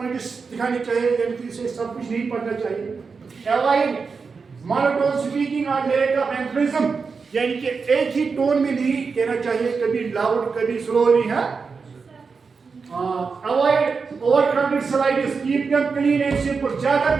दिखाने चाहिए, यानी कि इसे सब कुछ नहीं पढ़ना चाहिए। अवॉइड मोनोटोन स्पीकिंग और लैक ऑफ एम्फेसिज्म, यानी कि एक ही टोन में नहीं कहना चाहिए, कभी लाउड कभी स्लोली है। Avoid over crowded slides, keep them clean and simple. ज्यादा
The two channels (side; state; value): left; quieter; 5.0 dB